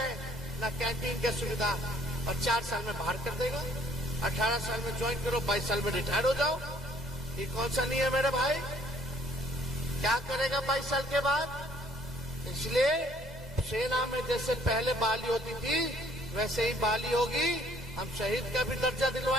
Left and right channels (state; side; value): normal; both; correlation 0.61